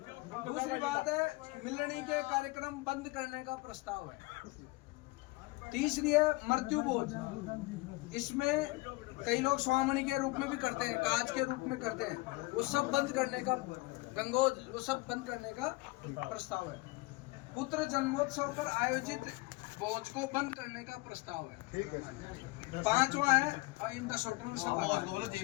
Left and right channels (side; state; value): right; quieter; 22.8 dB